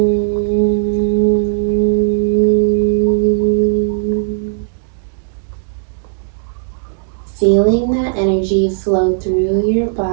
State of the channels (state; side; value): silent; left; digital silence